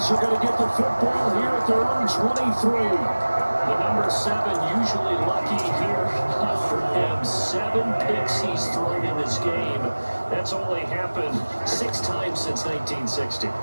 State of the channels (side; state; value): both; inverted; correlation -1.00